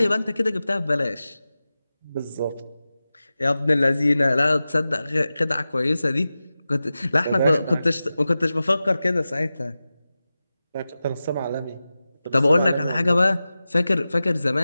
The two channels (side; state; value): both; inverted; correlation -0.95